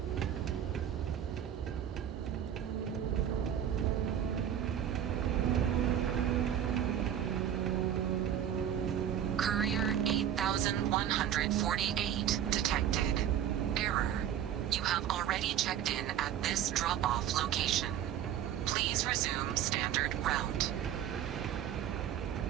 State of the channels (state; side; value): quieter; left; 10.1 dB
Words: Courier 8148 detected. Error. You have already checked in at this drop-off location. Please resume standard route.